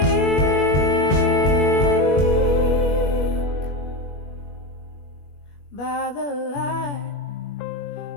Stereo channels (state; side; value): late; right; 21 ms